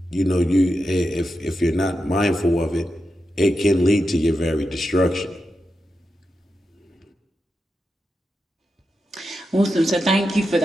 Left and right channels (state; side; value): normal; both; correlation 0.88